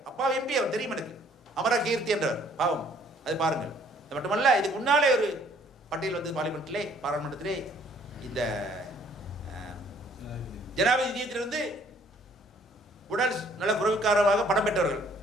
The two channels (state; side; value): normal; both; correlation 0.61